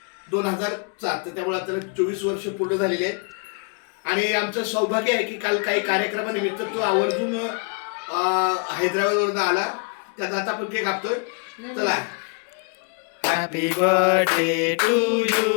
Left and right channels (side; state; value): right; quieter; 39.1 dB